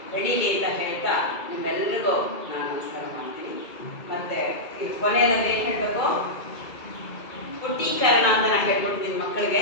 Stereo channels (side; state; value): right; late; 2.2 ms